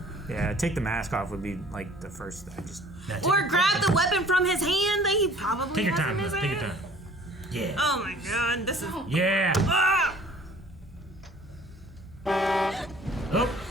Yeah, take the mask off would be like the first. Or grab the weapon from his hand that he probably Take your has time, in his Liv, hand. take your time. Yeah. Oh my god, this is. Yeah. Ah!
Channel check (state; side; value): normal; both; correlation 0.51